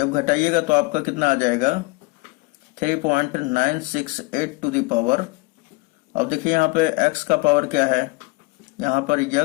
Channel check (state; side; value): quieter; right; 24.8 dB